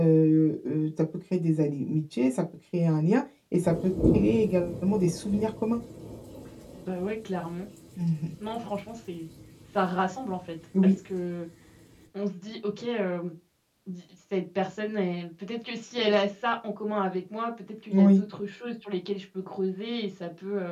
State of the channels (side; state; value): both; identical; correlation 1.00